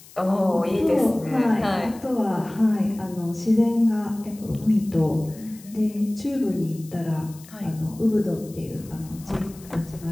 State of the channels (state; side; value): noise; left; hiss, 21 dB below the sound